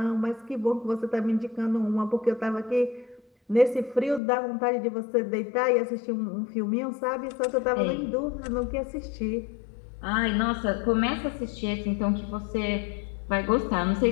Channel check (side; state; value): right; drops out; at 4.2 s